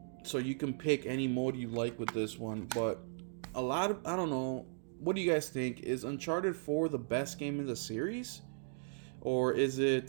So you can pick any mode you like with this one. But I don't know, what do you guys think? Is Uncharted 4 the best game in the series? Or is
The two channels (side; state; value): left; silent; digital silence